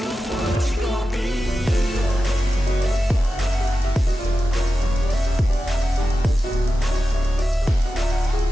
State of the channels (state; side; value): normal; both; correlation 0.92